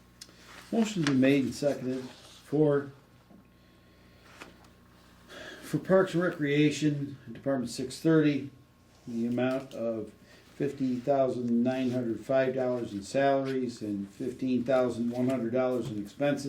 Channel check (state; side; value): identical; both; correlation 1.00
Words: Motion's been made and seconded for Parks and Recreation, Department 630, the amount of $50,905 in salaries and $15,100 in